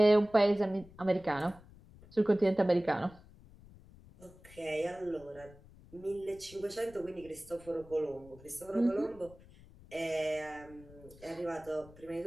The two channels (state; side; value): noise; left; rumble, 22 dB below the sound